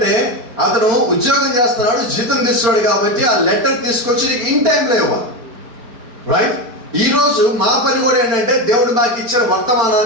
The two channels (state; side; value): late; left; 4.3 ms